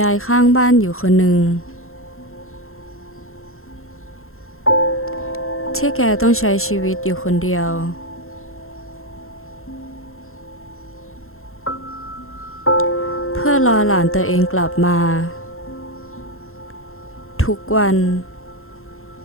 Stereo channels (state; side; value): late; right; 0.62 ms